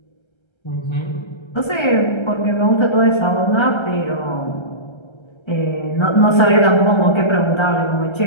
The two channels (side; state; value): right; late; 1.3 ms